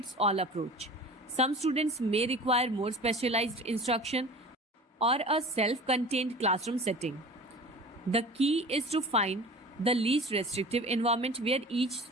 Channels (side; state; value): both; normal; correlation 0.39